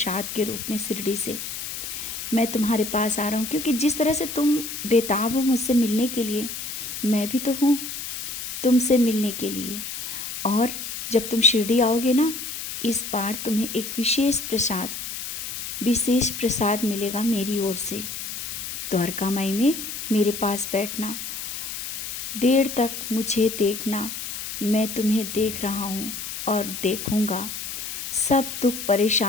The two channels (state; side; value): noise; left; hiss, 6 dB below the sound